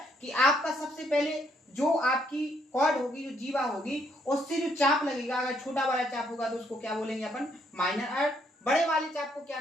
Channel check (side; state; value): both; normal; correlation 0.71